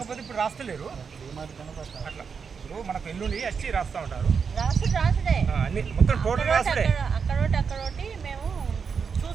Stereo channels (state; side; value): quieter; left; 6.0 dB